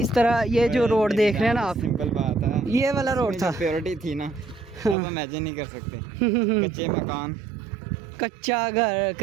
इस तरह ये जो रोड देख रहे हैं ना आप, सिंपल बात है, ये वाला रोड था। प्योरिटी थी ना, अब इमेजिन नहीं कर सकते। कच्चे मकान, कच्चा घर,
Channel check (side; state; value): left; drops out; at 5.0 s